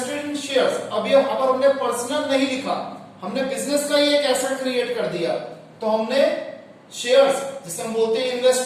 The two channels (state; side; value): identical; both; correlation 1.00